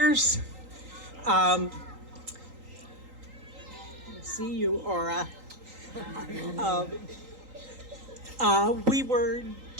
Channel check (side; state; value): left; late; 3.8 ms